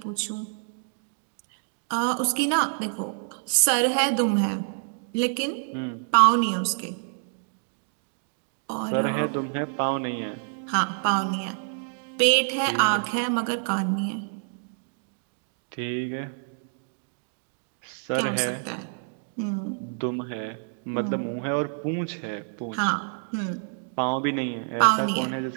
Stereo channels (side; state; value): left; silent; digital silence